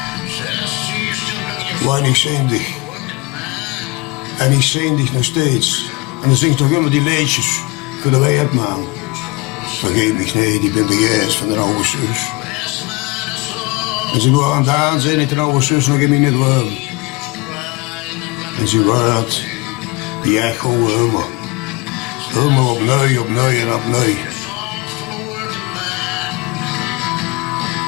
weinig zindig. En ik zing dich nog steeds. En dan zingt toch immer die liedjes voor de weerman. Vergeet me niet, ik ben de geest van de oude zus. En ze gaan aan het aanzien dat de oude zus nog in mijn droom. En ze wordt die echo helemaal. Helemaal opnieuw en opnieuw.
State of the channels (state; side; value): quieter; right; 25.2 dB